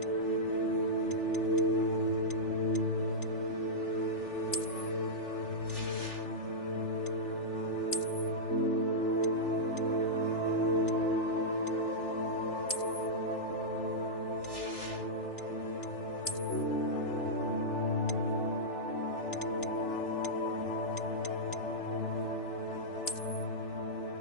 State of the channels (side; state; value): right; late; 3.4 ms